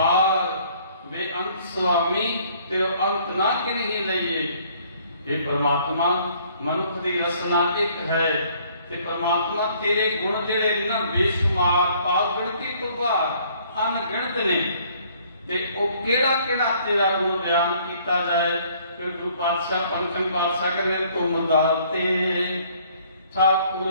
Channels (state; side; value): inverted; both; correlation -0.61